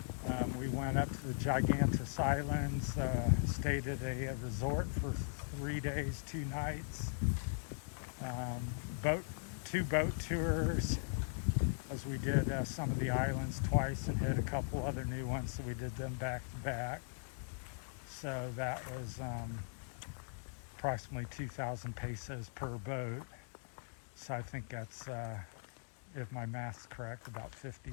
We went up to the Gigantes Islands, stayed at a resort for 3 days, 2 nights. Two boat tours, as we did some of the islands twice and hit a couple other new ones, so we did them back to back. So that was approximately 2,000 pesos per boat. So I think that's, if my math's correct, about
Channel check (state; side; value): silent; right; digital silence